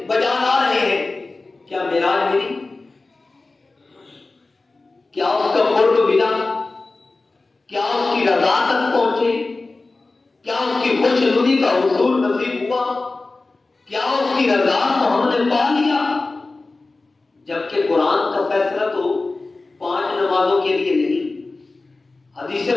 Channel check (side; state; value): right; quieter; 3.4 dB